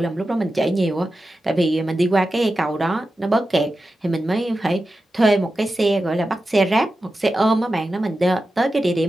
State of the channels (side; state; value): both; normal; correlation 0.92